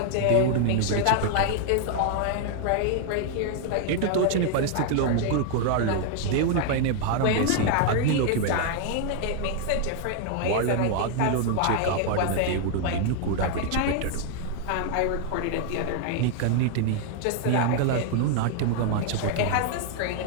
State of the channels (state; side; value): different; both; correlation 0.00